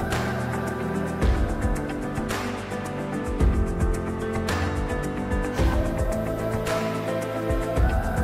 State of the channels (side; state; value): both; identical; correlation 1.00